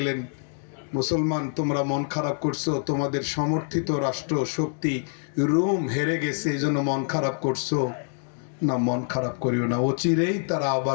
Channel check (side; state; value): right; silent; 61 dB below the other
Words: মুসলমান তোমরা মন খারাপ করছো, তোমাদের সমর্থিত রাষ্ট্র শক্তি রোম হেরে গেছে, এই জন্য মন খারাপ করছো না, মন খারাপ করিও না, অচিরেই তারা